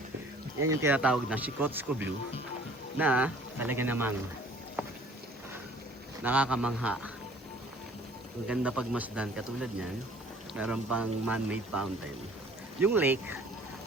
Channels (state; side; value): normal; both; correlation 0.53